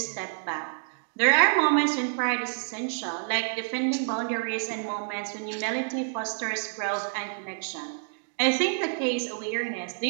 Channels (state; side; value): silent; left; digital silence